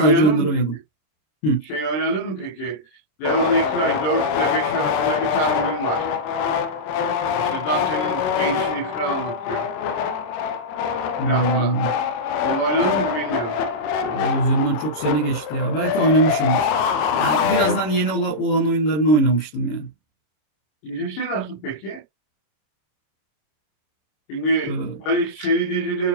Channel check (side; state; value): right; late; 27 ms